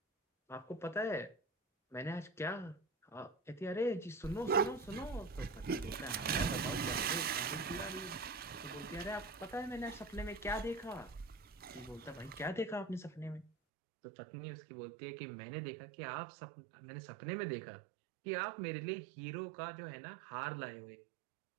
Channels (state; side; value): drops out; left; at 13.5 s